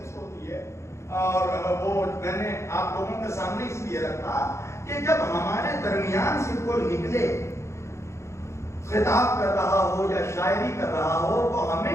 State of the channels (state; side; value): late; right; 0.14 ms